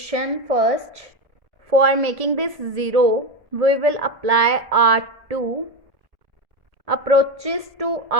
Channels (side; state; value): left; late; 1.8 ms